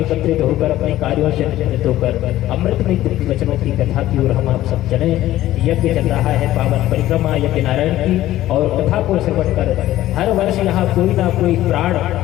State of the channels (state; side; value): quieter; right; 14.5 dB